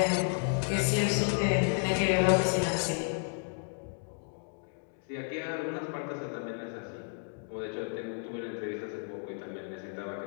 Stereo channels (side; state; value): right; silent; 56 dB below the other